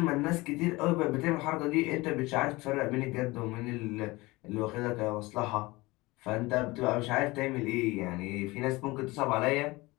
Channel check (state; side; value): quieter; right; 21.8 dB